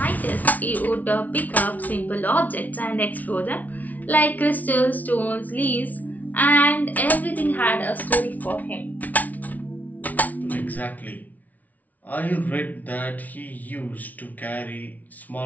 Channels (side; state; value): right; late; 0.075 ms